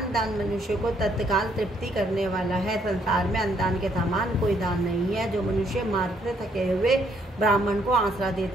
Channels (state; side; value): normal; both; correlation 0.69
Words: मनुष्य को तत्काल तृप्ति करने वाला है। संसार में अन्नदान के समान कोई दान नहीं है। जो मनुष्य मार्ग से थके हुए ब्राह्मण को आसरा